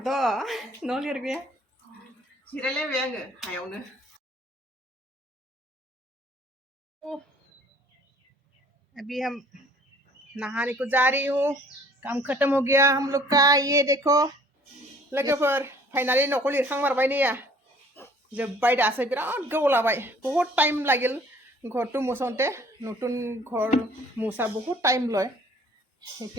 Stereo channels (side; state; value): both; normal; correlation 0.56